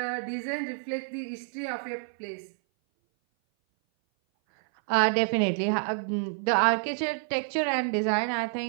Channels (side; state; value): left; silent; 57 dB below the other